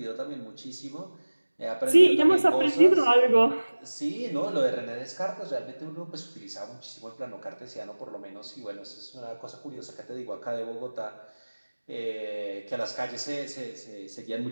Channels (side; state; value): both; inverted; correlation -1.00